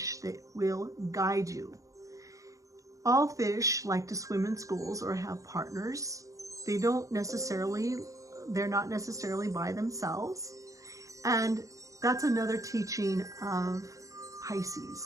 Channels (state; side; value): late; left; 0.16 ms